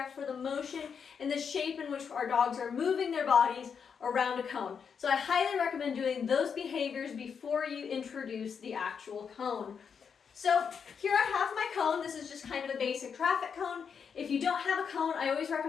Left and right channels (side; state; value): right; quieter; 6.6 dB